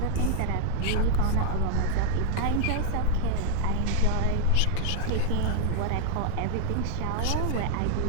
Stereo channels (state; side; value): different; both; correlation 0.00